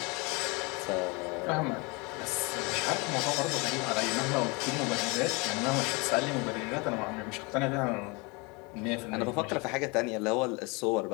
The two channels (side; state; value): right; quieter; 28.3 dB